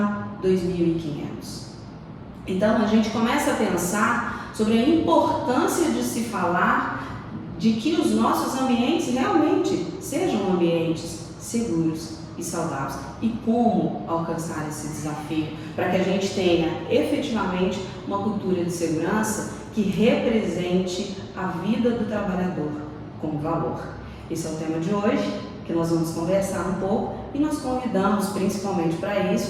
2.500. Então a gente começa a pensar sobre a importância de se falar de que os nossos ambientes realmente sejam ambientes seguros e saudáveis e como alcançar esse desafio para que a gente tenha efetivamente uma cultura de segurança que represente a vida do trabalhador como valor. Esse é o tema de hoje, que nós vamos conversar um pouco e nós convidamos principalmente para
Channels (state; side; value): identical; both; correlation 1.00